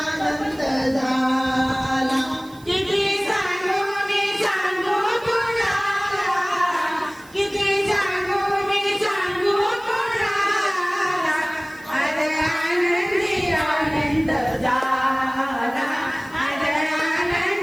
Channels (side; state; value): right; noise; hiss, 25 dB below the sound